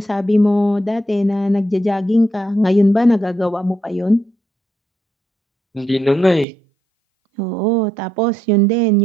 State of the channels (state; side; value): drops out; left; at 6.5 s